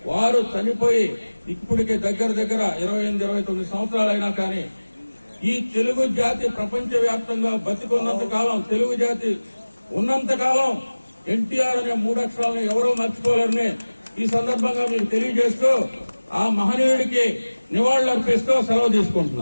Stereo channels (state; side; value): inverted; both; correlation -1.00